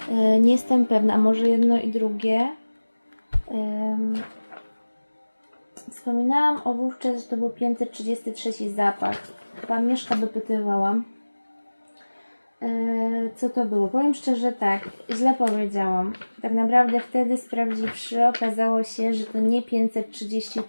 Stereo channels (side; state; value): both; inverted; correlation -1.00